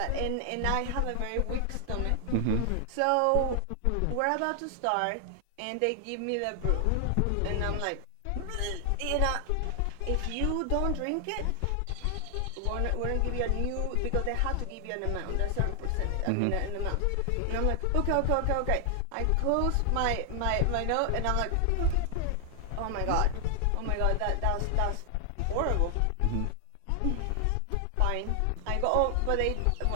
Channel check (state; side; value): different; both; correlation 0.00